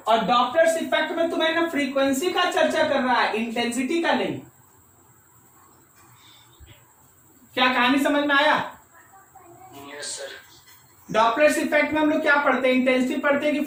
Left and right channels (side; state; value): both; identical; correlation 1.00